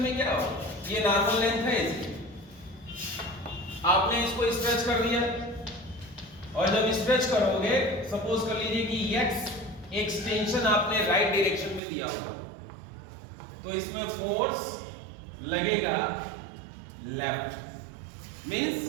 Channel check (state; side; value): drops out; left; at 11.8 s